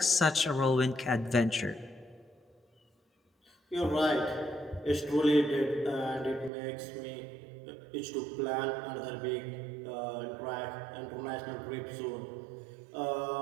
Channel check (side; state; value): left; drops out; at 6.5 s